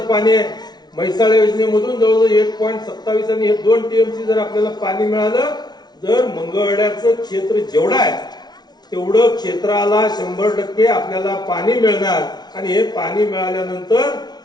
आहे म्हैसाळ योजनेमधून जवळजवळ 1.27 आणि हे 2 टीएमसी जर आपल्याला पाणी मिळालं, जर मंगळवेढ्याचं क्षेत्र जेवढं आहे तेवढं क्षेत्राला 100% आपल्याला पाणी मिळणार. आणि हे पाणी मिळाल्यानंतर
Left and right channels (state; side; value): late; right; 0.19 ms